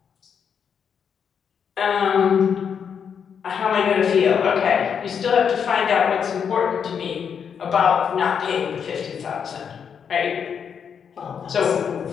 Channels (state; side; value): quieter; right; 7.2 dB